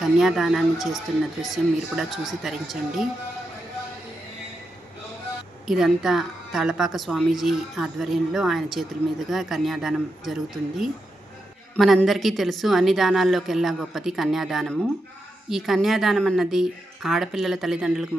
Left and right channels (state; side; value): normal; both; correlation 0.86